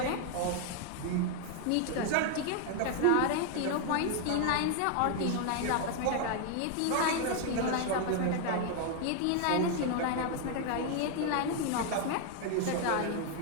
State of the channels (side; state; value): both; different; correlation 0.00